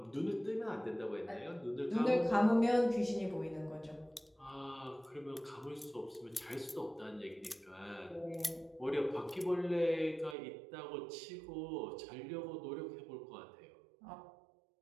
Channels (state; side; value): drops out; left; at 10.4 s